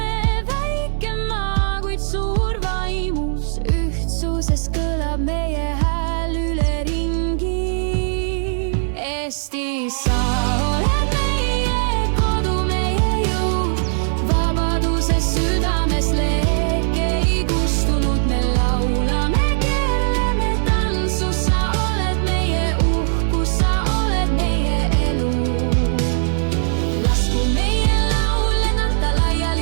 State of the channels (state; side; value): silent; left; digital silence